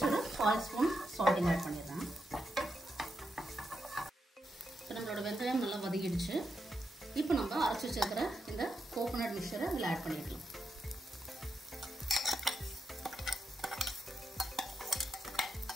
ஒரு 1/4 ஸ்பூன் சால்ட்டிங் ஆட் பண்ணிடுறேன். இப்போ நம்மளோட வெங்காயம் நல்லா வதக்கிடுச்சு. இப்போ நம்ம அரைச்சி வச்சிருக்கிற இந்த கோகோனட் மிக்சரை இதில் ஆட் பண்ணிக்கலாம்.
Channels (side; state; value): both; normal; correlation 0.84